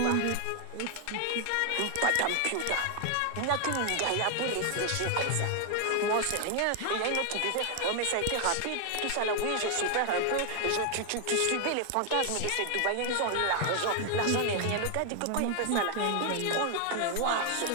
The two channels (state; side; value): different; both; correlation 0.00